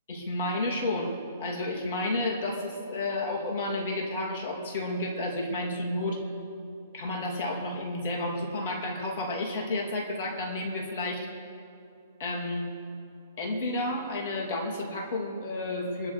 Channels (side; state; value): both; inverted; correlation -0.51